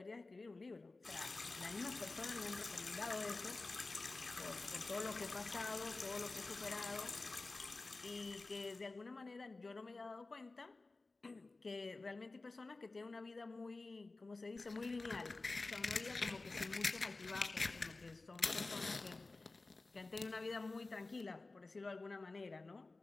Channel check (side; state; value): right; quieter; 3.4 dB